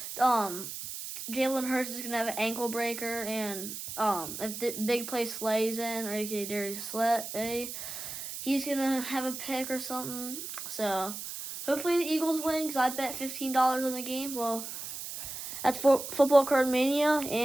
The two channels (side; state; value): right; noise; hiss, 8 dB below the sound